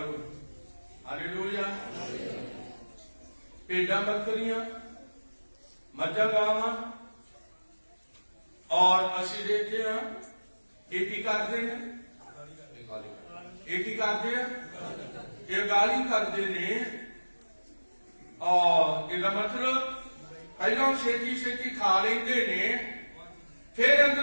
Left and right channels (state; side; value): inverted; both; correlation -1.00